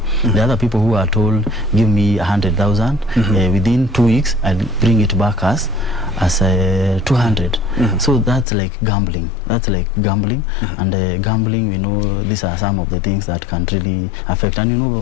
The other people who are told, give me 100,000 within 2 weeks, I'll bring it back as 200. So that's like gambling. And gambling, we know these are some of the things that can really affect. And you know,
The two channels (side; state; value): right; drops out; at 8.5 s